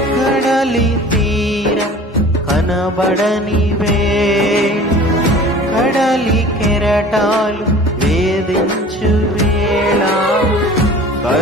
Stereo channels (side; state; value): both; normal; correlation 0.43